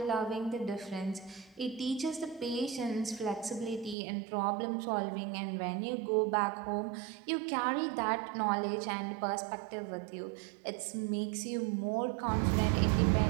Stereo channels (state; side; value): drops out; left; at 4.0 s